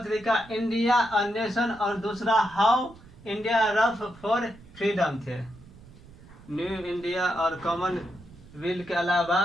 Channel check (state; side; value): noise; right; rumble, 21 dB below the sound